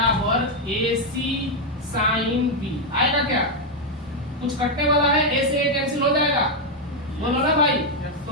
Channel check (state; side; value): normal; both; correlation 0.01